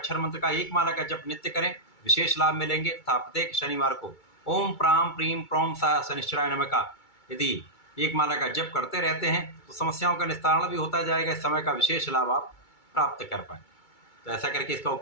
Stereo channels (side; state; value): right; late; 2.3 ms